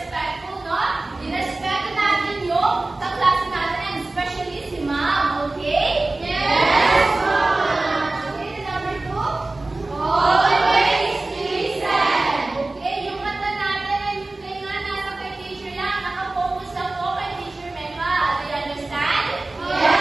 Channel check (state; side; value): quieter; left; 3.0 dB